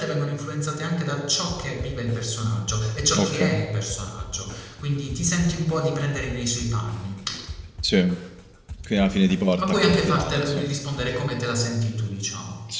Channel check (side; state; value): both; identical; correlation 1.00